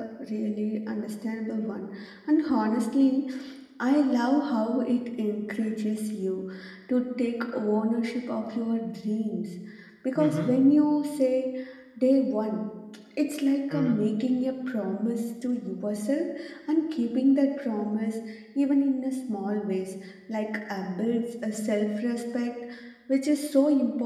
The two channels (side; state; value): both; identical; correlation 1.00